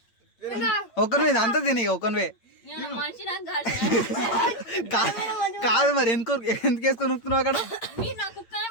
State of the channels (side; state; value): right; late; 8.8 ms